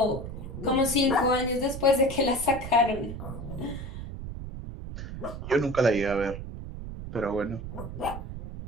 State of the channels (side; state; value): right; noise; rumble, 9 dB below the sound